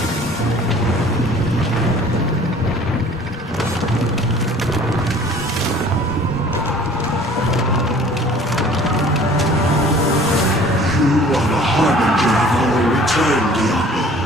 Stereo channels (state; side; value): normal; both; correlation 0.49